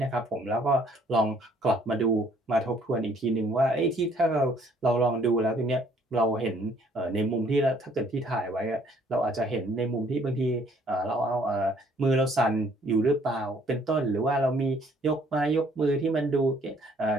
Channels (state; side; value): normal; both; correlation 0.62